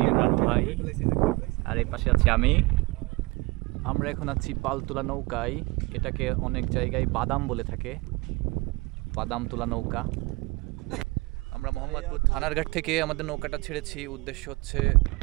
ইমরান ভাই আর এই পাশে আছি আমি। আমরা এখন আছি পালতোলা নৌকায়। এটাকে অনেক জায়গায় বাদাম বলে থাকে, বাদাম তোলা নৌকা। আমরা মোহাম্মদপুর থানার ঘাট থেকে আমাদের নৌকাটা ছেড়েছি। উদ্দেশ্য হচ্ছে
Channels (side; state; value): left; quieter; 24.6 dB